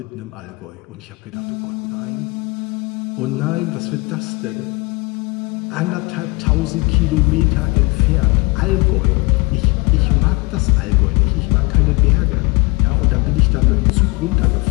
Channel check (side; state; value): right; quieter; 26.2 dB